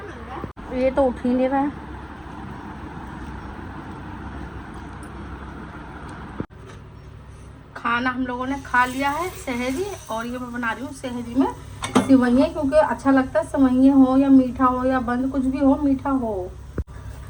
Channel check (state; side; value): identical; both; correlation 1.00